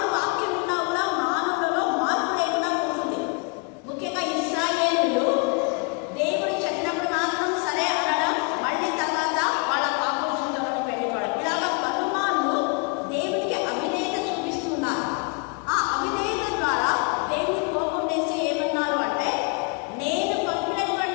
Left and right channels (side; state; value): right; quieter; 34.3 dB